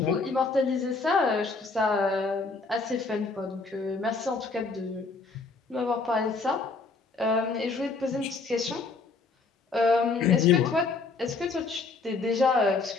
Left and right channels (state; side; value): quieter; right; 4.1 dB